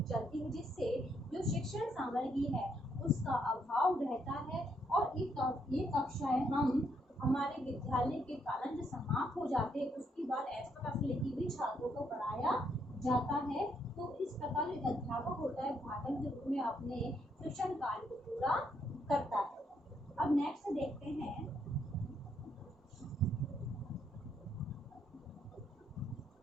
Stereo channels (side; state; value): both; normal; correlation 0.74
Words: चलती है, जिससे जो शिक्षण सामग्री है उसका अभाव रहता है और ये कक्षाएं हम हमारे विद्यालय के कालन जो समाप्त हो जाते हैं उसके बाद एक्स्ट्रा क्लास लेके भी छात्रों को पढ़ाया जाता है। तो इस प्रकार एक अध्यापक होता है भाषण के रूप में अपने शिक्षण कार्य को पूरा करता है। अब नेक्स्ट देखते हैं